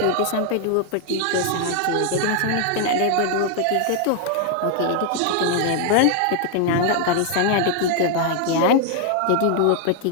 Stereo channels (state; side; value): different; both; correlation 0.00